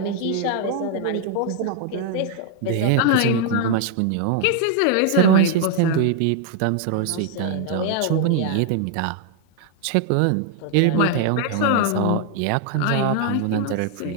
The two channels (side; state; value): both; different; correlation 0.00